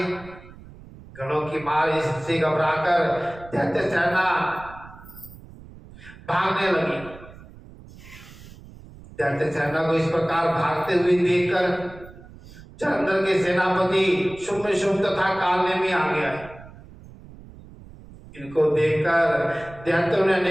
गणों की मार इससे घबराकर दैत्य सेना भागने लगी। दैत्य सेना को इस प्रकार भागते हुए देखकर जलंधर के सेनापति शुम्भ तथा कालनेमी आ गया। इनको देखकर दैत्यों ने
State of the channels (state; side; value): noise; right; rumble, 19 dB below the sound